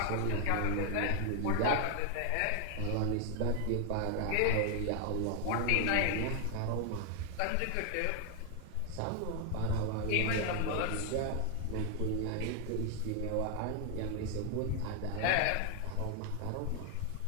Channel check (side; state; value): both; different; correlation 0.00